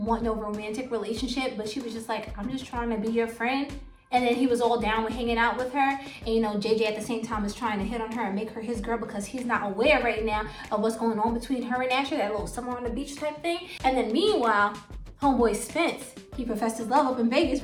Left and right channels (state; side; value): identical; both; correlation 1.00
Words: no romantic relationship, but she was just like, I'm just trying to be your friend. And then he was all down with hanging out with her. And you know, JJ at the same time is trying to hit on her and make her his girl because he's not aware right now of what's going on between her and Asher, that little summer on the beach type thing. And then meanwhile, homeboy Spence, he professed his love up in Vegas,